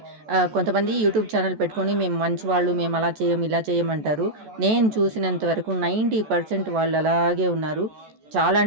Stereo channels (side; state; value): left; late; 14 ms